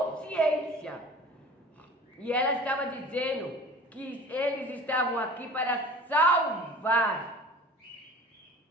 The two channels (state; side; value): normal; both; correlation 0.42